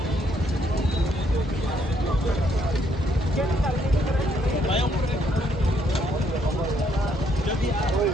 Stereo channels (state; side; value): normal; both; correlation 0.71